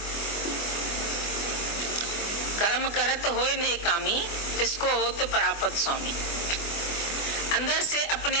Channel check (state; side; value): late; right; 24 ms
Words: कर्म करत होय ने कामी, तिसको होत परापत स्वामी। अंदर से अपने